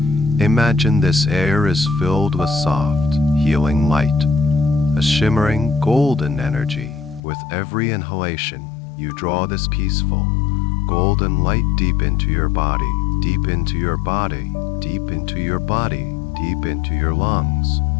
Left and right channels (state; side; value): drops out; right; at 7.2 s